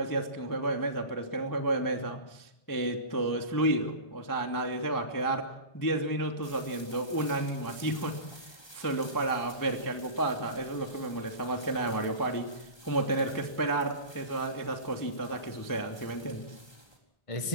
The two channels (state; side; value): late; right; 1.3 ms